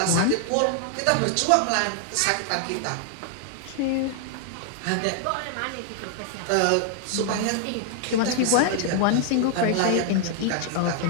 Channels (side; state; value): both; different; correlation 0.00